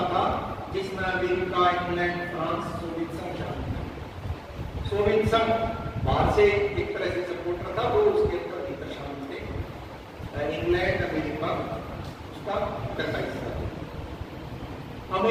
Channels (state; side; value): identical; both; correlation 1.00